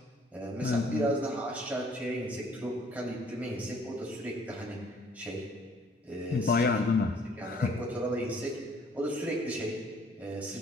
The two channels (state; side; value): normal; both; correlation 0.59